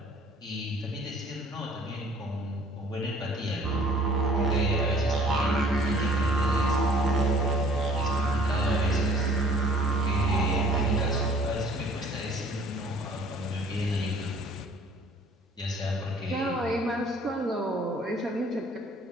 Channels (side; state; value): both; normal; correlation 0.54